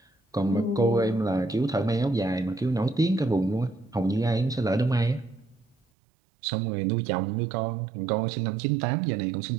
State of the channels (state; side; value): drops out; left; at 5.8 s